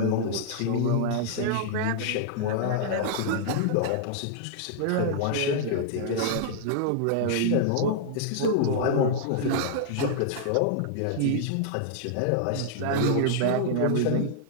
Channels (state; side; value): different; both; correlation -0.01